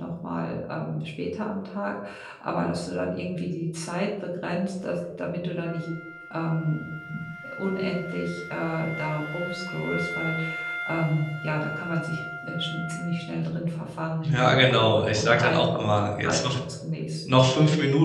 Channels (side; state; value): both; identical; correlation 1.00